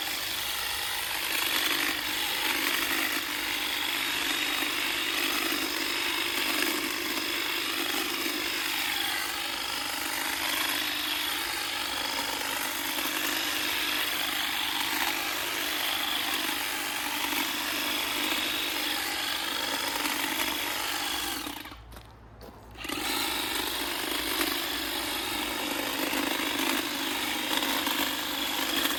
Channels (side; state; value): both; identical; correlation 1.00